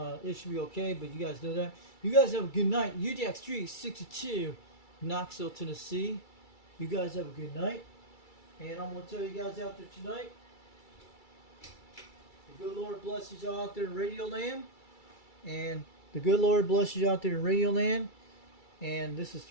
should be okay, but you guys know that. You guys have a good night. UDX362, Knoxville, Tennessee. You guys have a good night. And I'm gonna tell you guys out there tonight, the good Lord blesses you out there in Radio Land. And the good Lord blesses you out there in Radio Land. And this is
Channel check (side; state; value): right; late; 2.3 ms